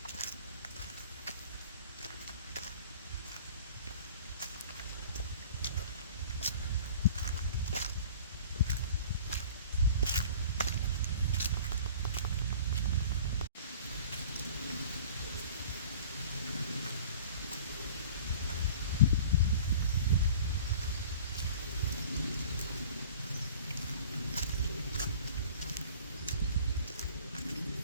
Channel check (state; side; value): inverted; both; correlation -0.44